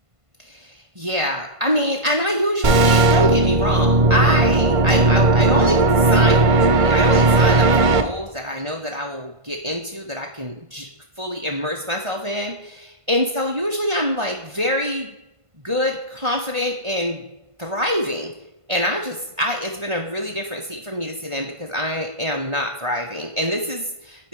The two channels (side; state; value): left; late; 1.5 ms